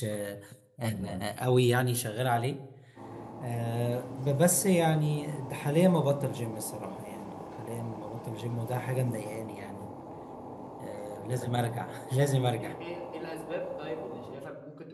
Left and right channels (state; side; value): identical; both; correlation 1.00